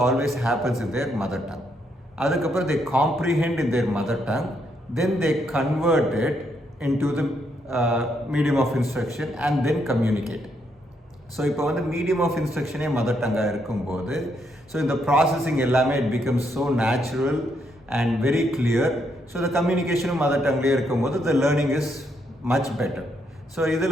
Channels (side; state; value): both; normal; correlation 0.76